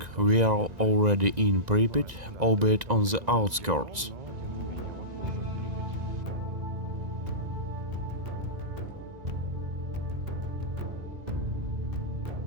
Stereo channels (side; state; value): left; late; 2.0 ms